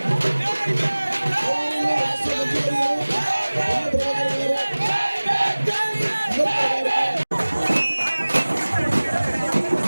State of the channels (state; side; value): inverted; both; correlation -1.00